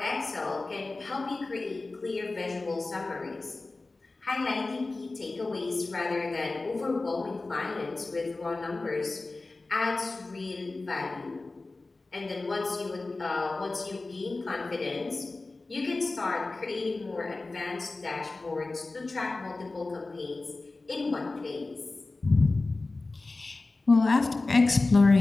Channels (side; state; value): right; quieter; 3.4 dB